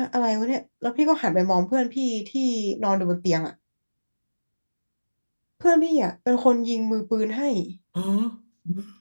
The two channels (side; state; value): both; inverted; correlation -1.00